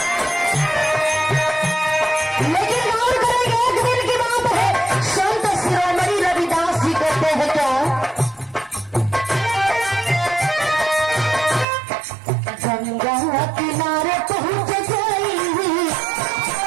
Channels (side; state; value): left; drops out; at 11.7 s